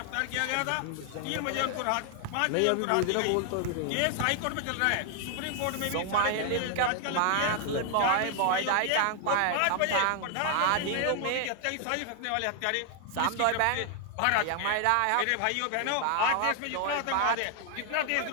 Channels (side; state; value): both; different; correlation 0.00